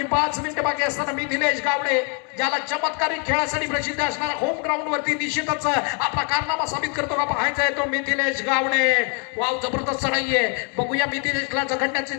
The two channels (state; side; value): quieter; right; 38.4 dB